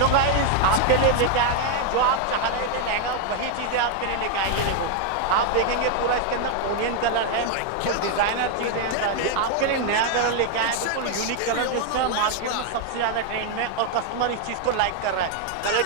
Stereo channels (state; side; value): different; both; correlation 0.01